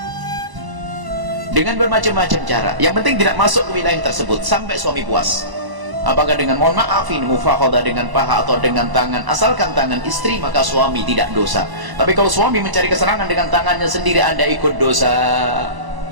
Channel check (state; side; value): late; left; 1.0 ms